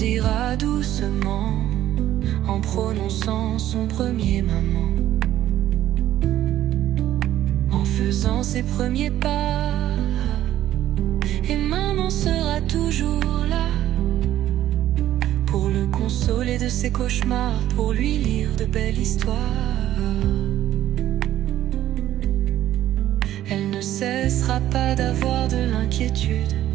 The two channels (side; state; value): left; quieter; 12.9 dB